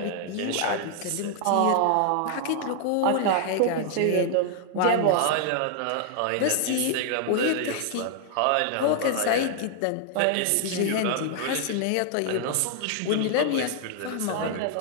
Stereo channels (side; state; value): both; different; correlation 0.00